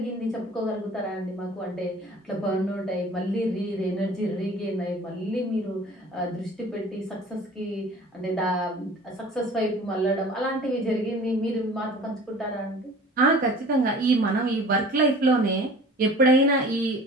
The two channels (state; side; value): normal; both; correlation 0.45